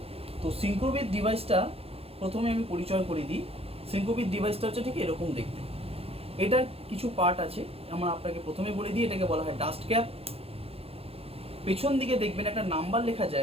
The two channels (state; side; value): late; left; 0.28 ms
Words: তো সিঙ্ক্রোবিট ডিভাইসটা প্রথমে আমি পরিচয় করে দিই। সিঙ্ক্রোবিট ডিভাইসটা হচ্ছে ঠিক এরকম দেখতে। এটার কিছু পার্ট আছে, আমার আপনাকে প্রথমে বলে দিই। এটাকে বলা হয় ডাস্ট ক্যাপ। পেছন দিকে দেখবেন একটা নাম্বার লেখা